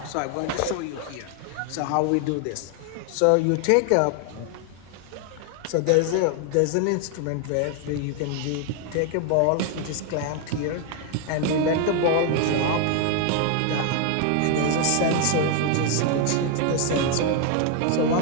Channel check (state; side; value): different; both; correlation 0.01